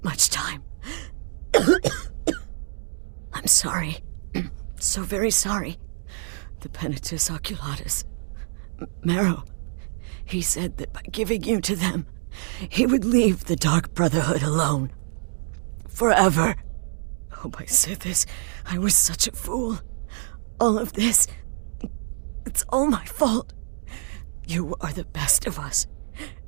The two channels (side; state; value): left; silent; 61 dB below the other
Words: much time. I'm sorry. So very sorry. The Penitus Oculatus. Marrow. He said that by giving you to them, he would leave the Dark Brotherhood alone. Forever. Oh, my Sithis, I was such a fool. All of this, it's all my fault. You are the best of us,